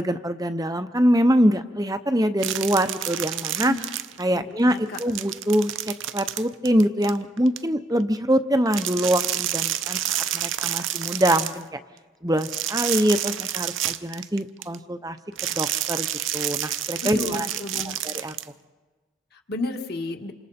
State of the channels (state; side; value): normal; both; correlation 0.72